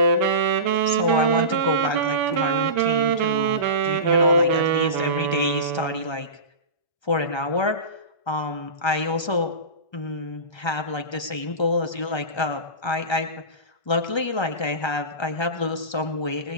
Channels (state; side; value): late; right; 1.3 ms